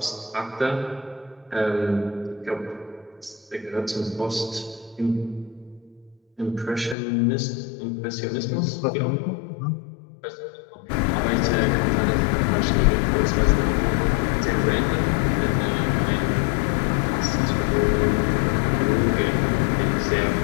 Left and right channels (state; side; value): drops out; right; at 7.0 s